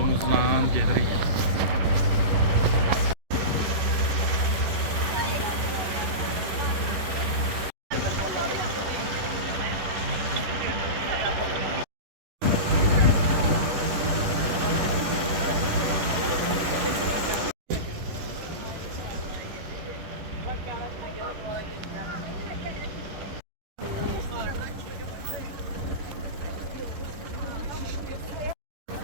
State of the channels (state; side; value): late; left; 10 ms